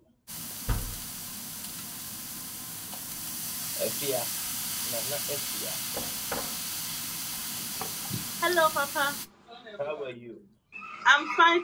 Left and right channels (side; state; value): both; identical; correlation 1.00